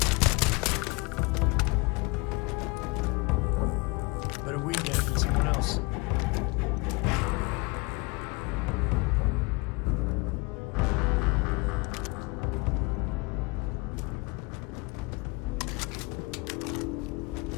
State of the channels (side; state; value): right; quieter; 27.1 dB